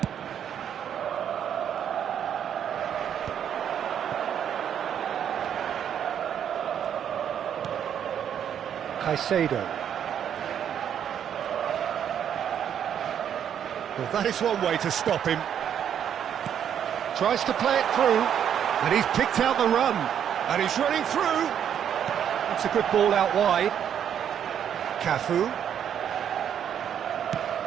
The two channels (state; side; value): quieter; left; 9.0 dB